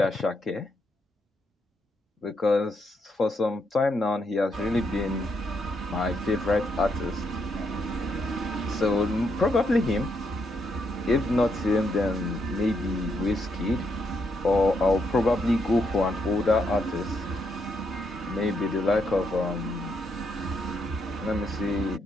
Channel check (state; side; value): normal; both; correlation 0.78